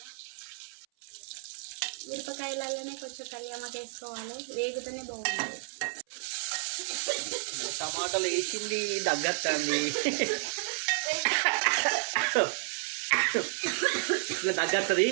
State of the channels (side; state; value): left; silent; 57 dB below the other